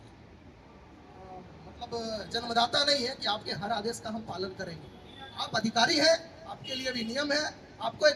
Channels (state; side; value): identical; both; correlation 1.00